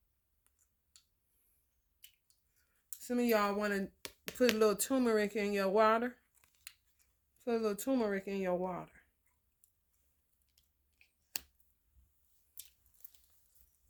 Some of y'all want to put a little turmeric in your water. Put a little turmeric in your water.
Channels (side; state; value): both; identical; correlation 1.00